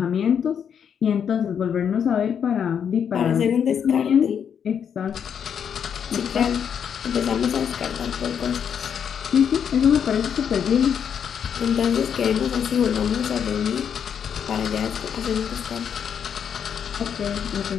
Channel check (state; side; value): quieter; right; 7.9 dB